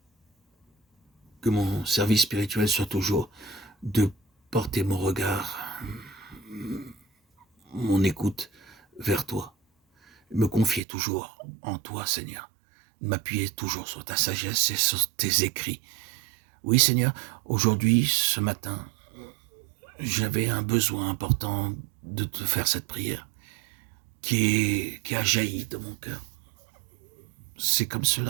que mon service spirituel soit toujours de porter mon regard, mon écoute vers toi, me confier toujours en toi, Seigneur, m'appuyer toujours sur ta sagesse et sur tes écrits. Oui, Seigneur, aujourd'hui, ce matin, j'avais un besoin important de te faire cette prière qui a jailli de mon cœur. C'est comme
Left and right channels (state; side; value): drops out; left; at 10.8 s